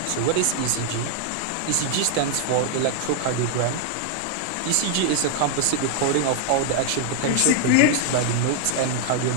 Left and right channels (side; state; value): both; different; correlation 0.00